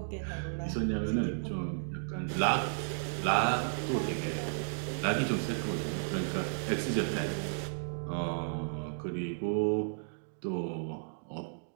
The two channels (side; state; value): left; silent; digital silence